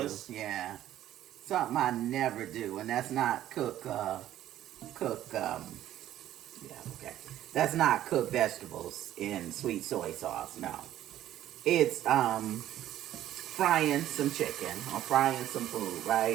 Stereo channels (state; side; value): quieter; left; 12.6 dB